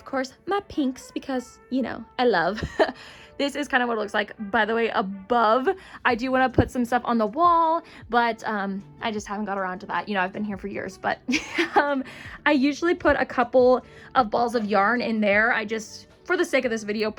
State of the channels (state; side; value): identical; both; correlation 1.00